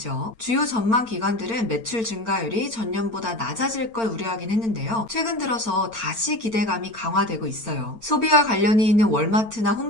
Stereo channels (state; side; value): late; left; 8.9 ms